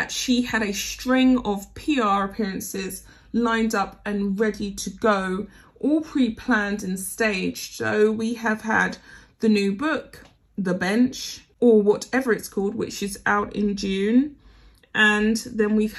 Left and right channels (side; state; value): both; identical; correlation 1.00